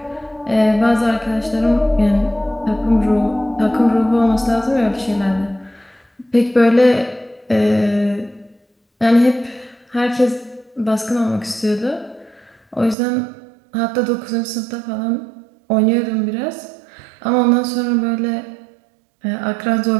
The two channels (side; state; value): left; drops out; at 13.0 s